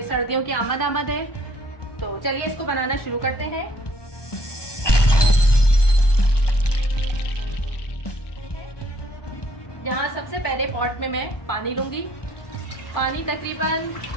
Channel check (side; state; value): right; late; 1.2 ms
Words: सर्दियों की आमद है। तो चलिए इसको बनाना शुरू करते हैं। यहाँ सबसे पहले पॉट में मैं पानी लूंगी। पानी तकरीबन